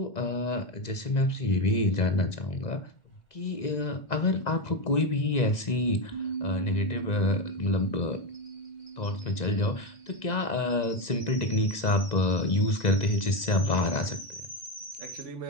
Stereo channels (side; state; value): right; late; 2.0 ms